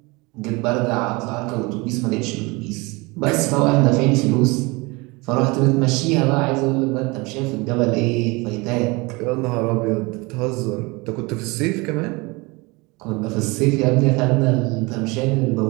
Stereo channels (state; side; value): quieter; left; 25.5 dB